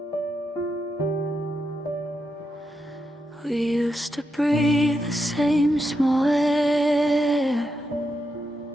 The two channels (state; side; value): normal; both; correlation 0.84